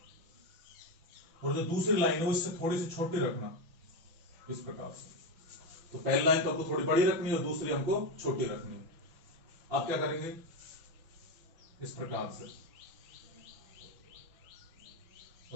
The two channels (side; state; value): left; late; 6.0 ms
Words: और जो दूसरी लाइन है वो इससे थोड़ी सी छोटी रखना, इस प्रकार से। तो पहली लाइन तो हमको थोड़ी बड़ी रखनी है, और दूसरी हमको छोटी रखनी है। आप क्या करेंगे, इस प्रकार से,